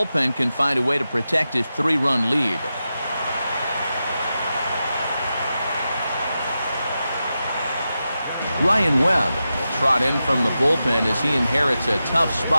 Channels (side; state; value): both; inverted; correlation -0.91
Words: can find a way to protect his 3-run lead. Ryan Webb will trot in from the bullpen as he inherits a tough